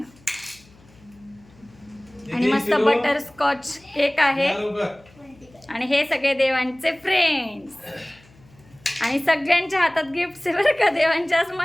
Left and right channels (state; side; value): noise; left; hum, 27 dB below the sound